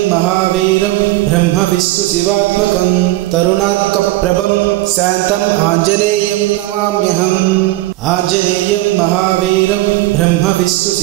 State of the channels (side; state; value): left; quieter; 17.7 dB